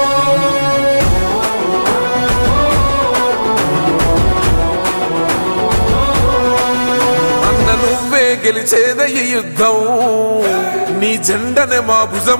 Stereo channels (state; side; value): inverted; both; correlation -1.00